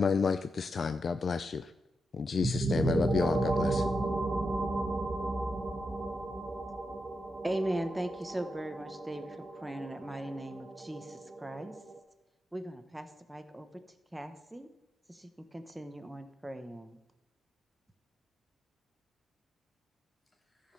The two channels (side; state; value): both; normal; correlation 0.86